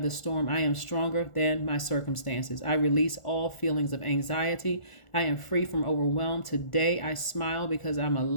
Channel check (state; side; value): late; right; 1.4 ms